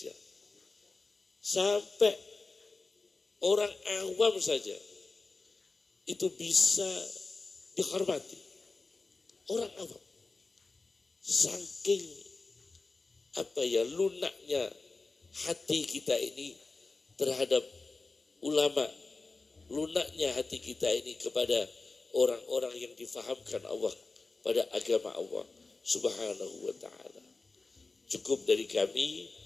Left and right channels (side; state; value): right; quieter; 3.7 dB